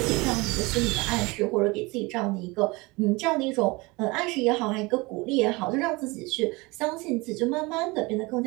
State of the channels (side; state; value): left; quieter; 24.4 dB